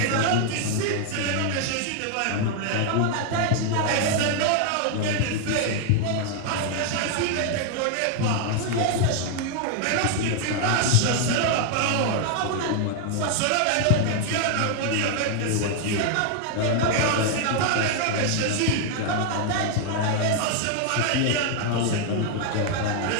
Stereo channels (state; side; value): different; both; correlation 0.00